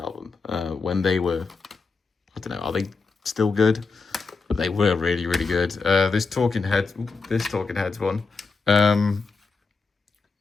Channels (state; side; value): quieter; right; 4.4 dB